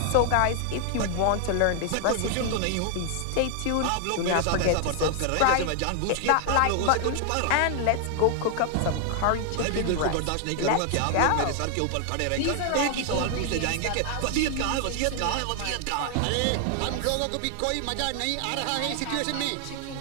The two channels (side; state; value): both; different; correlation 0.00